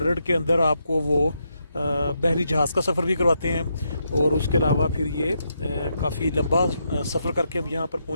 के अंदर आपको वो बहरी जहाज़ का सफ़र भी करवाते हैं। और उसके अलावा फिर ये काफ़ी लंबा सफ़र करके हम यहाँ पर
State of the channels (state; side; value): inverted; both; correlation -0.81